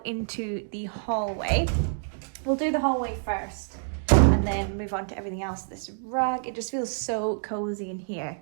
into the hallway. We'll do the hallway first and then move on to everything else. This rug, it just feels so cozy in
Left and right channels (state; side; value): silent; left; digital silence